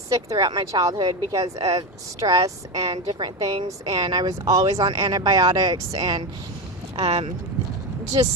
throughout my childhood because of stress and different things, and I was always on antibiotics, and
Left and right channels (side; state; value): both; normal; correlation 0.15